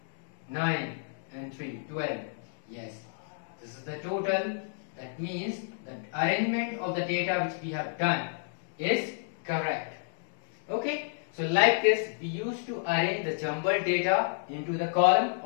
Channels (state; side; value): silent; right; digital silence